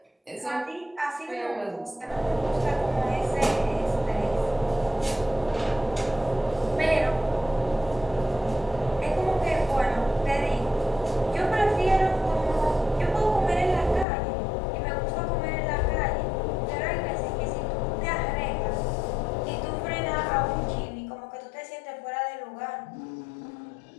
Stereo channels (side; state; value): right; drops out; at 14.1 s